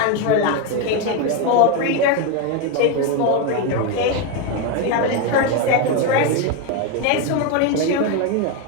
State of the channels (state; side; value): different; both; correlation 0.02